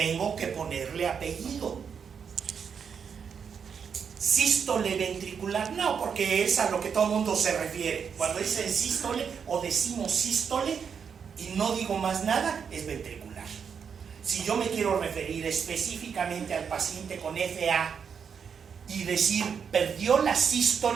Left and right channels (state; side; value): quieter; left; 6.8 dB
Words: que ponerle apellido. Sístole ventricular, no, porque es a lo que todo el mundo se refiere. Cuando dicen sístole o decimos sístole y no digo más nada, es ventricular. Si yo me quiero referir específicamente al paciente con FA y decir perdió la